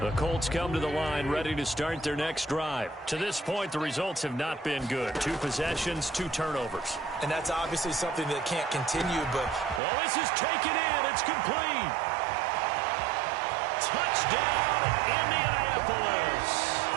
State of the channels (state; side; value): drops out; left; at 9.8 s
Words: Colts come to the line ready to start their next drive. To this point, the results have not been good. 2 possessions, 2 turnovers. And that's obviously something that can't continue, but... Oh, this is taken in. It's complete. Touchdown, Indianapolis.